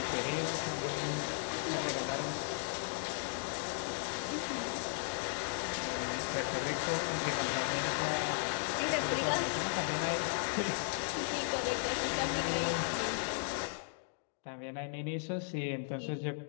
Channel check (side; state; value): right; silent; digital silence